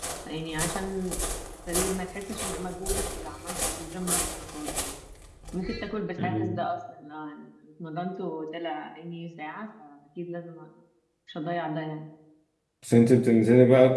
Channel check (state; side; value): identical; both; correlation 1.00